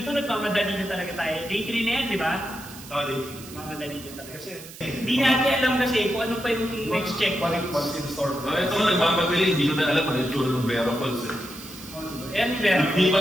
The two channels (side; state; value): right; noise; hiss, 16 dB below the sound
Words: nagmamadali na talaga tayo. Day 3 na yan, di ba? Oo, day 3. Mamadali na talaga. Hindi natin alam kasi kung ano pa yung next checkpoint. What's in store? Ito ko nagmamadali, hindi ko na alam ano yung tsura ng Vera Falls. Yan, Vera. Hindi pa